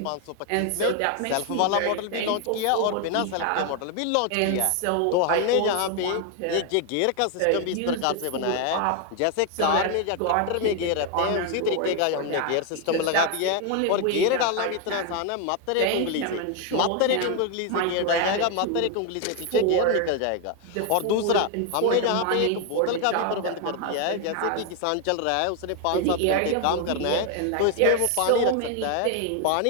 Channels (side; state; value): both; different; correlation 0.01